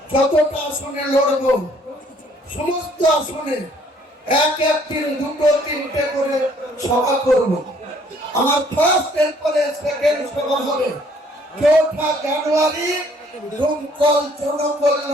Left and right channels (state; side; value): normal; both; correlation 0.61